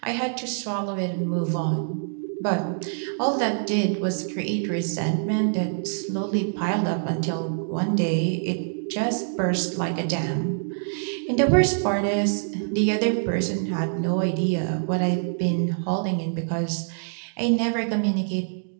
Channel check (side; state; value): left; silent; digital silence